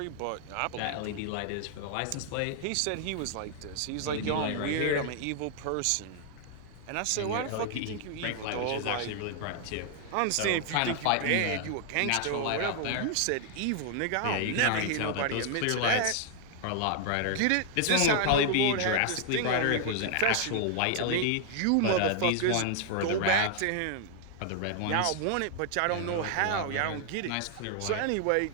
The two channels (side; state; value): both; different; correlation 0.00